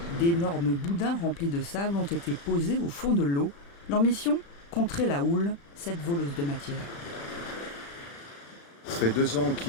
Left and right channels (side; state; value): right; late; 35 ms